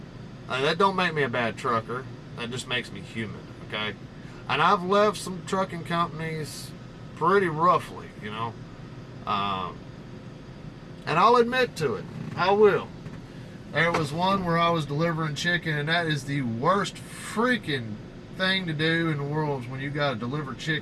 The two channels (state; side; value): identical; both; correlation 1.00